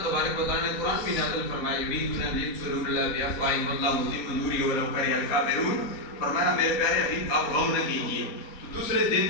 تبارک و تعالیٰ نے قرآن بھی نازل فرمایا، یریدون ان یطفئوا اللہ بافواہہم واللہ متم نورہ ولو کرہ الکافرون۔ فرمایا میرے پیارے حبیب آپ غم نہ کیجیے۔ تو دوسرے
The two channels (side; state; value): right; late; 4.3 ms